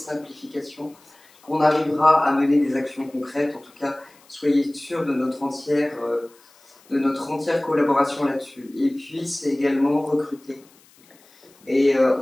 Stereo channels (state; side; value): noise; left; hiss, 29 dB below the sound